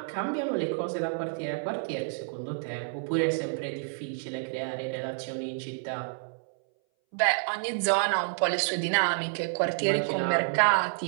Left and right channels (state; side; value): silent; left; 59 dB below the other